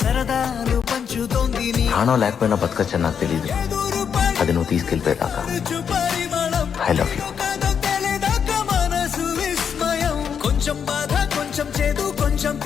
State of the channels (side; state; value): right; quieter; 7.3 dB